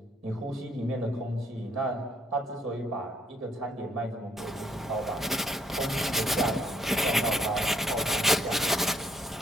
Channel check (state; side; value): normal; both; correlation 0.69